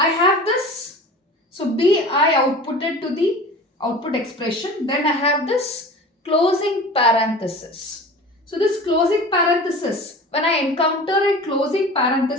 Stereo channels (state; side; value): normal; both; correlation 0.38